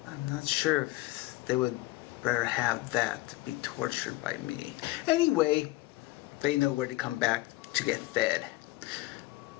I'm not sure if they would rather have that to be tortured by me. Anyway, they know where to come back to get fed.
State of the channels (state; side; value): quieter; right; 19.6 dB